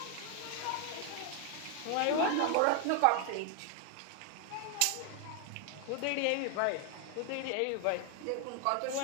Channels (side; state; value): both; different; correlation 0.00